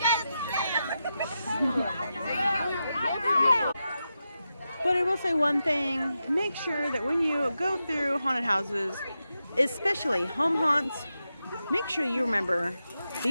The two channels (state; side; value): inverted; both; correlation -0.89